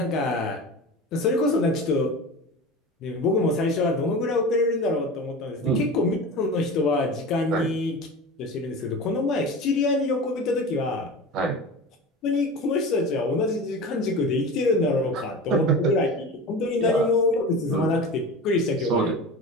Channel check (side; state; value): both; normal; correlation 0.31